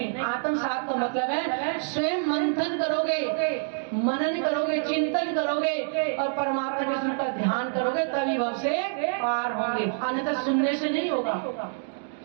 आत्मसात का मतलब है स्वयं मंथन करोगे, मनन करोगे, चिंतन करोगे और परमात्मा के स्वरूप का ध्यान करोगे, तभी भव से पार होंगे। अन्यथा सुनने से नहीं होगा।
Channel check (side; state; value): left; silent; digital silence